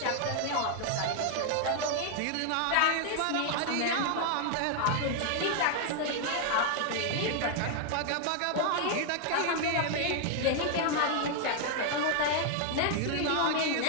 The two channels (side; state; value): both; different; correlation 0.00